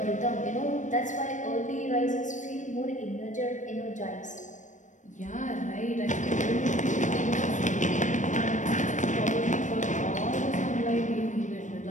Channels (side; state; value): right; late; 0.36 ms